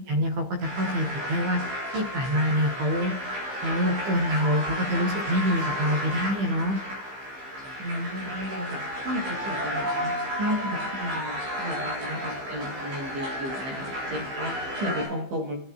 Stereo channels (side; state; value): left; late; 15 ms